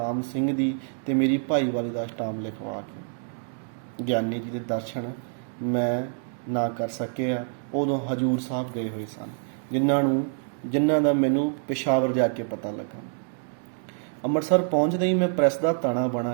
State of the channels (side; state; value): left; silent; digital silence